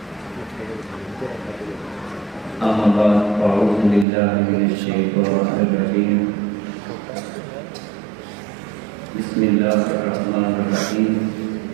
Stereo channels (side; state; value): left; drops out; at 4.0 s